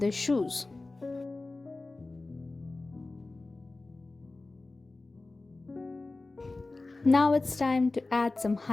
shoes. Now it's time to add some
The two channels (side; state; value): right; quieter; 3.3 dB